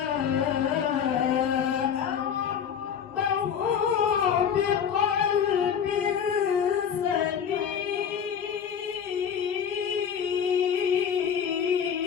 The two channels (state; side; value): quieter; right; 7.8 dB